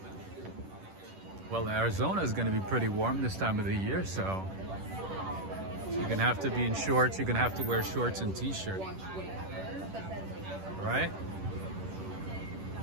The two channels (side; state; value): left; late; 10 ms